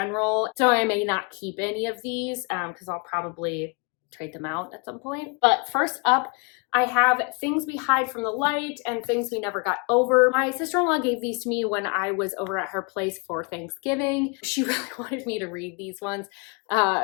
So I may not keep any of these because I'll probably trade them out at some point. But first up, I have Things We Hide from the Light and Things We Never Got Over. My sister-in-law gave these to me when I was over at her place for Thanksgiving. She really wanted me to read these ones.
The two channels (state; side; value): quieter; right; 32.5 dB